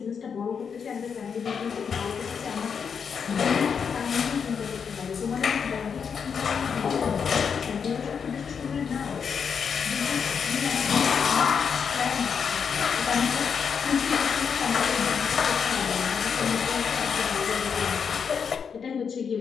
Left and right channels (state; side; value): quieter; right; 6.6 dB